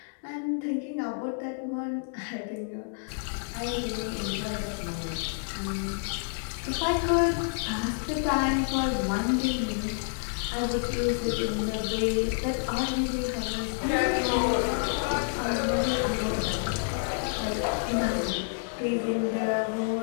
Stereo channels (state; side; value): silent; right; digital silence